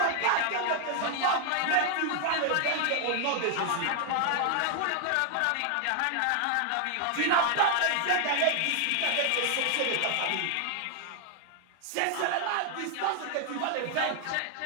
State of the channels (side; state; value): both; different; correlation 0.00